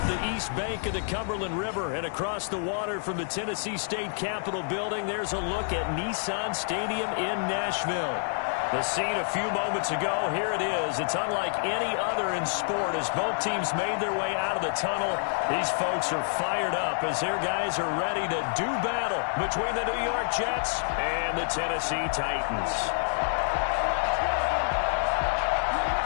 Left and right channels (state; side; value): silent; right; digital silence